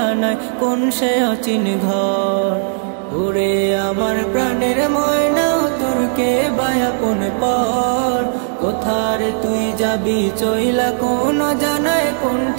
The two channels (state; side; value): silent; left; digital silence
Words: কোন সে অচিন ঘর। ওরে আমার প্রাণের ময়না তোর কে বায়াপন পর কোথারে তুই যাবি চইলা কোন জানায় কোন